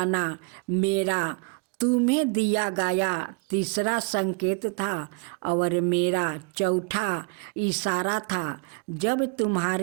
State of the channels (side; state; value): left; quieter; 32.3 dB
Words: मेरा तुम्हें दिया गया तीसरा संकेत था। और मेरा चौथा इशारा था जब